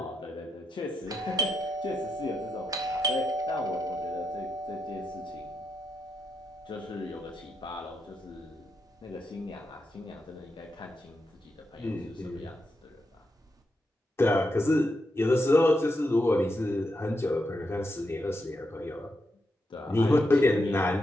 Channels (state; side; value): normal; both; correlation 0.84